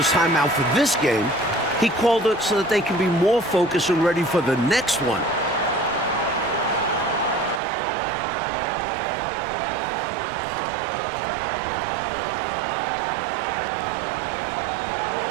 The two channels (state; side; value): drops out; left; at 7.6 s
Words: timeout for this game. He called it so that they can be more focused and ready for the next one.